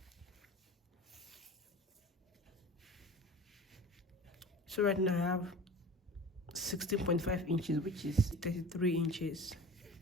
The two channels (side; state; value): both; normal; correlation 0.37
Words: So right now I have 16.5 inches, which is 33 inches,